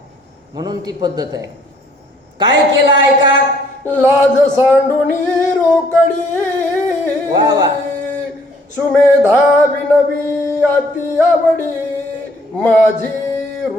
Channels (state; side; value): normal; both; correlation 0.63